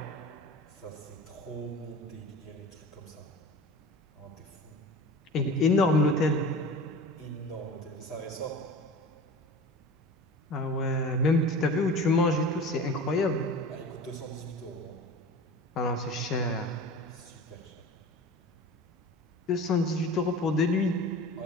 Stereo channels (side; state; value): both; normal; correlation 0.37